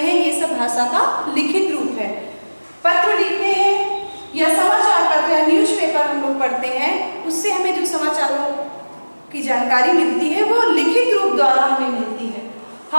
ये सब भाषा का लिखित रूप है। पत्र लिखते हैं या समाचार पत्र या न्यूज़पेपर हम लोग पढ़ते हैं, उससे हमें जो समाचारों की जानकारी मिलती है वो लिखित रूप द्वारा हमें मिलती है।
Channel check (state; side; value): inverted; both; correlation -1.00